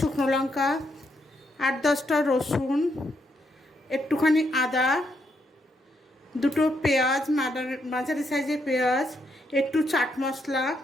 লঙ্কা, 8-10টা রসুন, একটুখানি আদা, 2টো পেঁয়াজ, মাঝারি সাইজের পেঁয়াজ, একটু চাট মশলা,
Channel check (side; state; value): both; normal; correlation 0.77